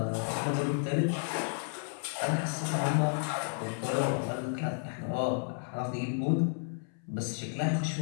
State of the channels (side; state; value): right; silent; 56 dB below the other